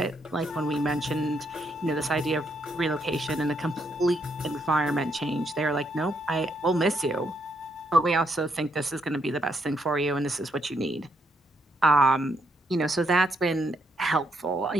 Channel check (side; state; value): both; normal; correlation 0.75